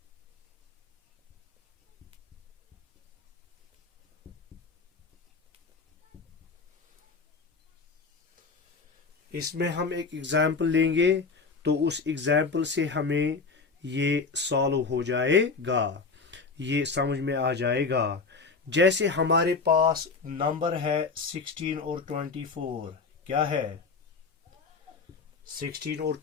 इसमें हम एक एग्जाम्पल लेंगे, तो उस एग्जाम्पल से हमें ये सॉल्व हो जाएगा, ये समझ में आ जाएगा। जैसे हमारे पास नंबर है 16 और 24। क्या है, 16 और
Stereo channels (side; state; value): right; quieter; 4.5 dB